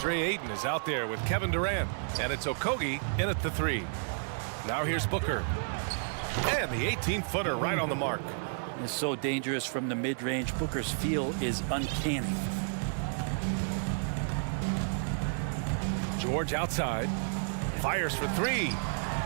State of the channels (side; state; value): left; silent; digital silence